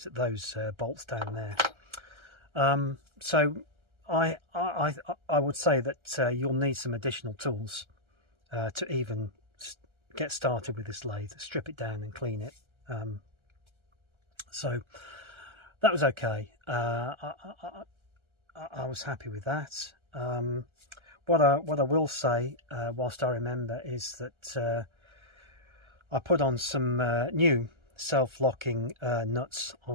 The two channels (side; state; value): left; late; 1.3 ms